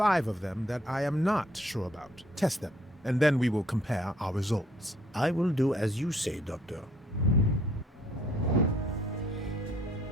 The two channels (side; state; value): both; normal; correlation 0.63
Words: of them that I am not sure about. Test them, and then we will compare our results. I will do as you say, Doctor.